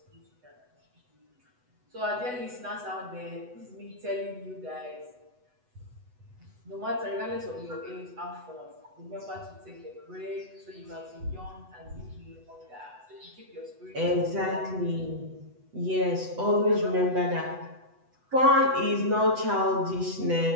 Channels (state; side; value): late; left; 8.1 ms